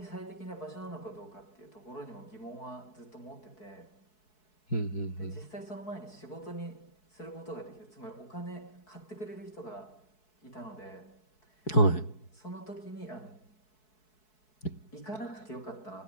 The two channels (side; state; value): right; late; 4.7 ms